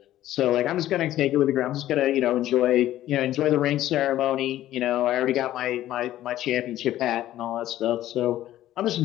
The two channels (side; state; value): right; quieter; 13.6 dB